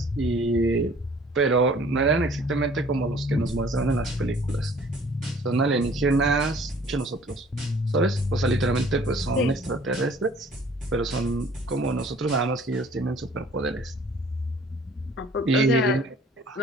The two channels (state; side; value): normal; both; correlation 0.54